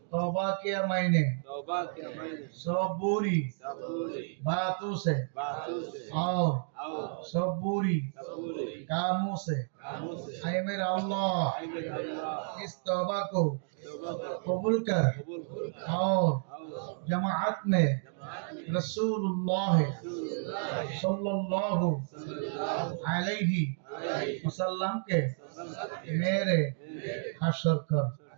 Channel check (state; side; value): silent; left; digital silence